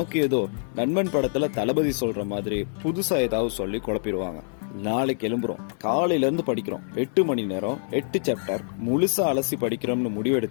ஏதோ நண்பன் படத்துல தளபதி சொல்ற மாதிரி புதுசா ஏதாவது சொல்லி குழப்பிடுவாங்க. நாளைக்கு எழும்புறோம், காலையில இருந்து படிக்கிறோம், 8 மணி நேரம் 8 சாப்டர் முழுசா அலசி படிக்கிறோம்னு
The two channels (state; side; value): silent; right; digital silence